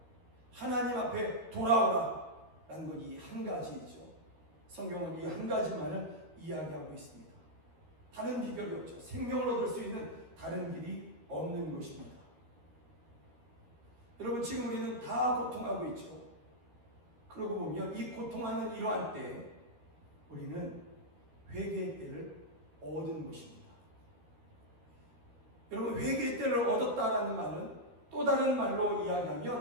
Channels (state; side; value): late; left; 13 ms